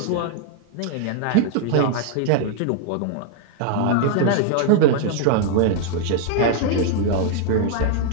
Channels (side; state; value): both; different; correlation 0.00